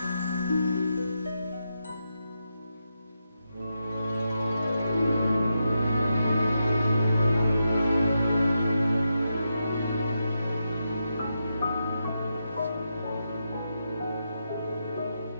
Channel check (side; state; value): both; inverted; correlation -0.86